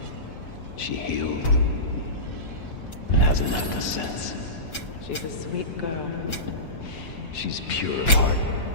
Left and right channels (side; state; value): right; late; 6.1 ms